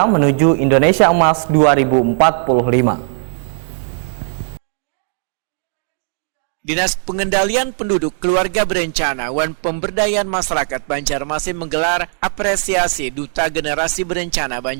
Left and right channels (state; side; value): silent; left; digital silence